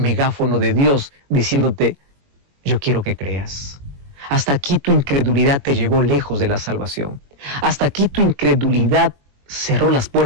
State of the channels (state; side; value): late; left; 21 ms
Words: de Dios diciéndote, yo quiero que creas. Hasta aquí tu incredulidad te llevó lejos de la salvación. Hasta aquí tu incredulidad cerró las